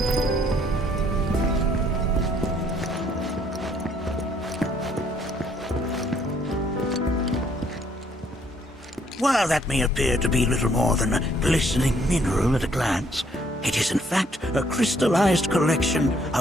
While that may appear to be little more than a glistening mineral at a glance, it is in fact a crystallized collection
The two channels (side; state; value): both; normal; correlation 0.66